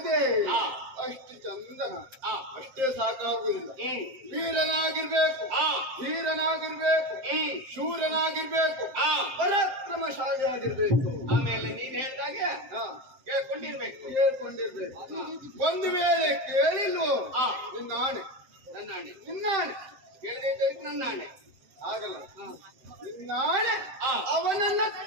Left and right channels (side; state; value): left; late; 7.7 ms